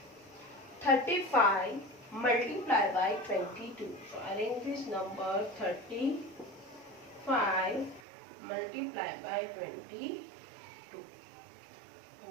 35 multiplied by 22. So arrange this number. 35 multiplied by 22.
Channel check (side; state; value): left; drops out; at 8.0 s